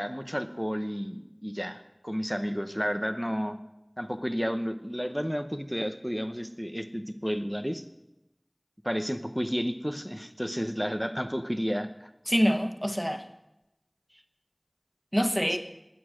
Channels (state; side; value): identical; both; correlation 1.00